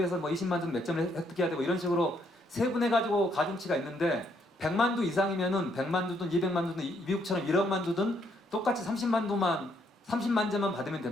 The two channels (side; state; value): both; normal; correlation 0.71